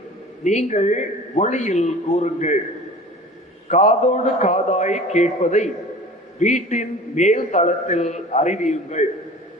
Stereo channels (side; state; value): both; normal; correlation 0.41